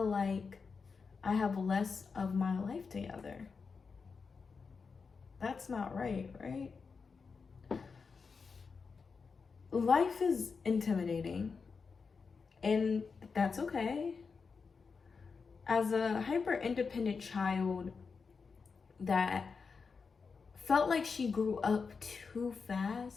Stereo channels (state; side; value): quieter; right; 5.1 dB